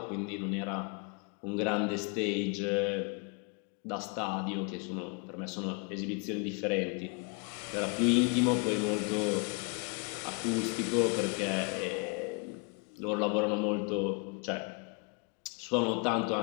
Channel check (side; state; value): right; quieter; 34.7 dB